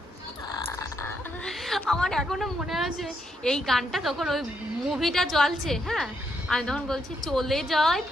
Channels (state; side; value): normal; both; correlation 0.78